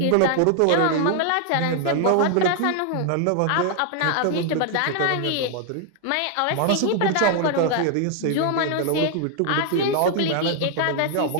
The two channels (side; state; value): both; different; correlation 0.00